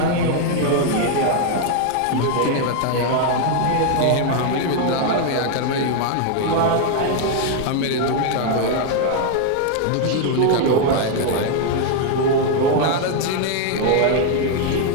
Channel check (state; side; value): different; both; correlation 0.00